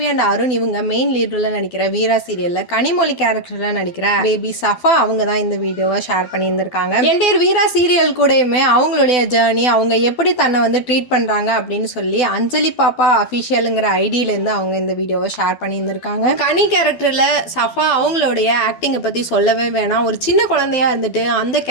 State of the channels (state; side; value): late; right; 12 ms